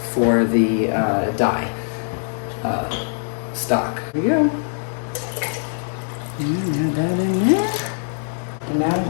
for the dye stock. Here we go. And add that in there. And now I'm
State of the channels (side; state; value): right; silent; 64 dB below the other